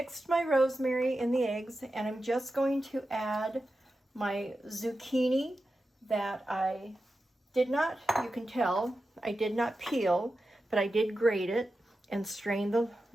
my rosemary in the eggs, and I'm just going to add my zucchini that I did not, you can tell, I did not peel, but I did grate it and strain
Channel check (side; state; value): both; normal; correlation 0.91